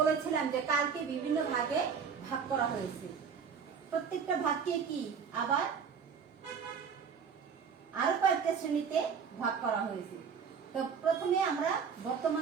যে কালকে বিভিন্ন ভাগে ভাগ করা হয়েছে, প্রত্যেকটা ভাগকে কি আবার আরো কয়েকটা শ্রেণীতে ভাগ করা হয়েছে। তো প্রথমে আমরা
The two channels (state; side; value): quieter; left; 6.5 dB